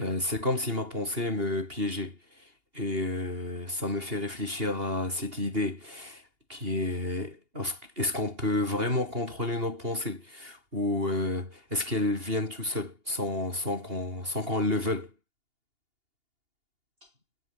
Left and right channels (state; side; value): late; left; 2.8 ms